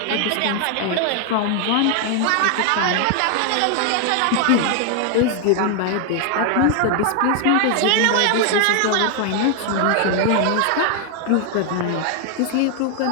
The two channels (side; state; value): both; different; correlation 0.00